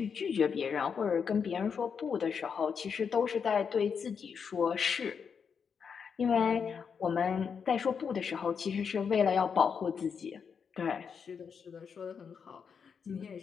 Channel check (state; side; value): quieter; right; 6.5 dB